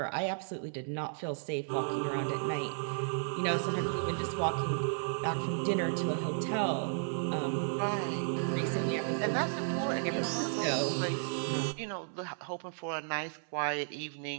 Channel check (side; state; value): left; silent; 55 dB below the other